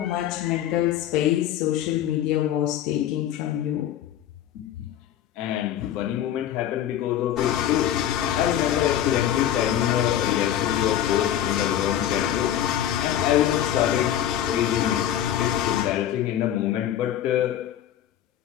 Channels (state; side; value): quieter; right; 11.2 dB